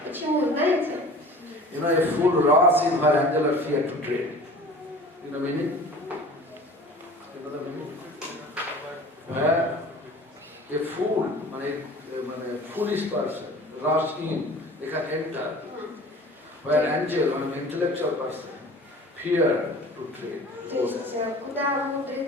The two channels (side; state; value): both; normal; correlation 0.42